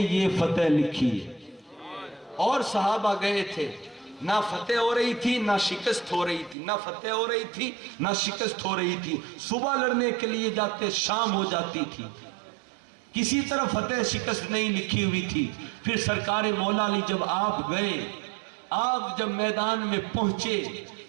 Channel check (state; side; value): drops out; left; at 6.6 s